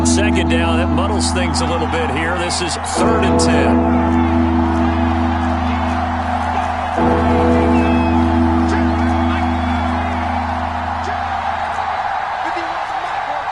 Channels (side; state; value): both; identical; correlation 1.00